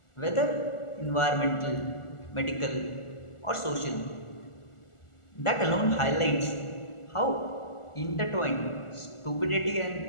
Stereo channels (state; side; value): late; right; 1.4 ms